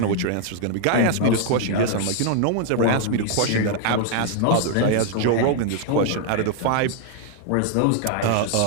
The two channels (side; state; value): both; different; correlation 0.00